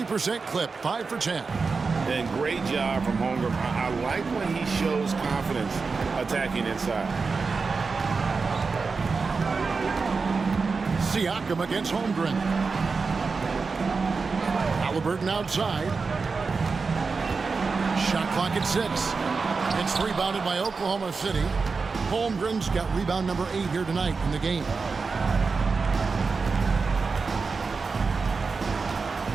clip, 5 for 10. And great job from Holmgren. I like when he shows confidence attacking inside. Siakam against Holmgren. Halliburton outside. Shot clock at 6. It's rebounded by Oklahoma City. Holmgren's got rebound number 8 here tonight in the game.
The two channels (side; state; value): left; quieter; 4.6 dB